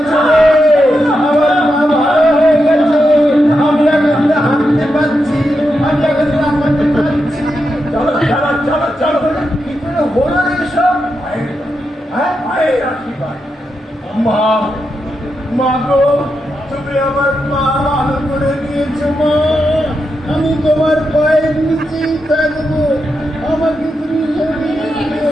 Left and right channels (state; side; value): normal; both; correlation 0.86